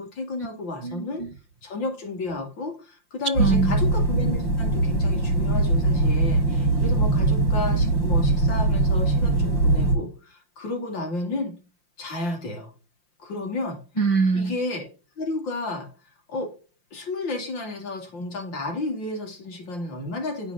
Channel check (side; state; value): right; late; 5.7 ms